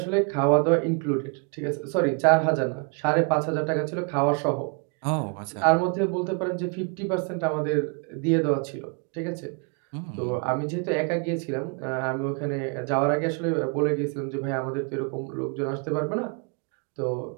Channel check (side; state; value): left; quieter; 37.2 dB